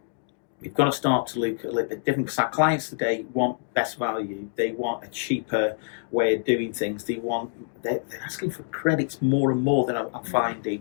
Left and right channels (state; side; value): silent; right; digital silence